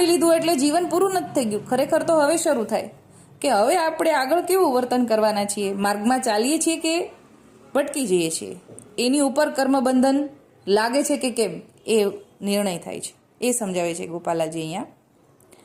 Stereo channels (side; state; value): both; identical; correlation 1.00